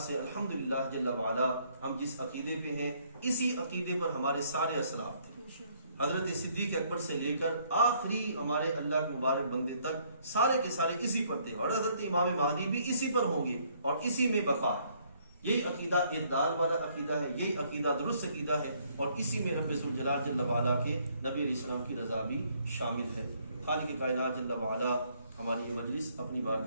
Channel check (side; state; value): both; inverted; correlation -0.66